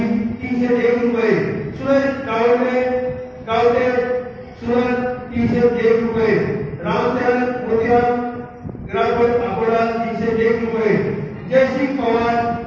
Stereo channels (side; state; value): both; identical; correlation 1.00